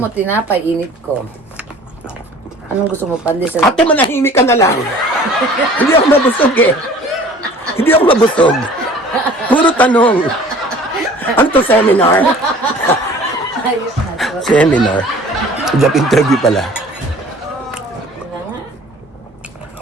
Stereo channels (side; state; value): both; normal; correlation 0.48